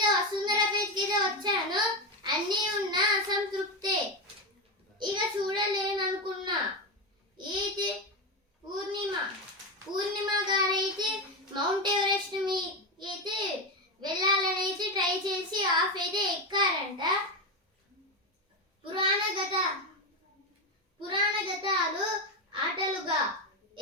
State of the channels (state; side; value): normal; both; correlation 0.13